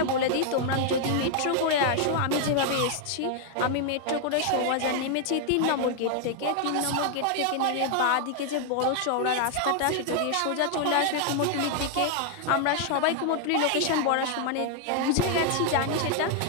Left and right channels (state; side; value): different; both; correlation 0.00